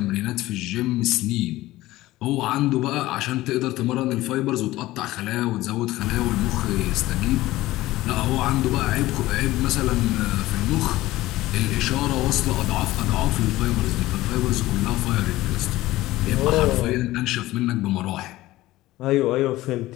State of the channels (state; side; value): quieter; right; 17.2 dB